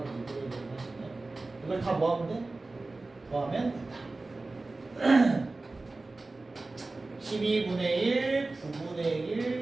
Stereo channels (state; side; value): quieter; left; 3.3 dB